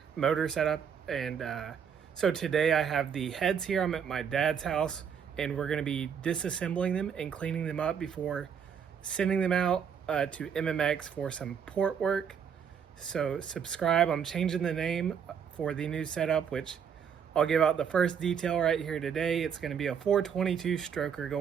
motor setup. And so today I have the heads here. I'm at my dad's house, and we're going to be disassembling them and cleaning them up before sending them out to MMX for some port work. So subscribe. I'm changing the name for the new setup, which I'll give out the first detail right here today. It's going to be a 422 stroker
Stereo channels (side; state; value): left; quieter; 7.5 dB